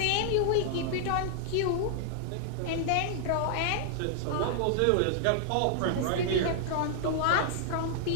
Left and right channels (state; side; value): different; both; correlation -0.01